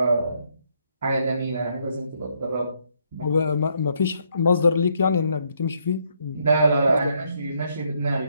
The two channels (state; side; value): inverted; both; correlation -0.73